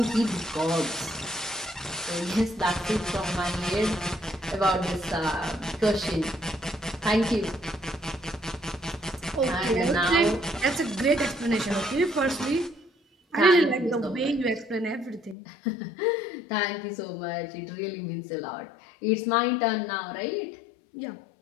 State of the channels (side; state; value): right; drops out; at 15.4 s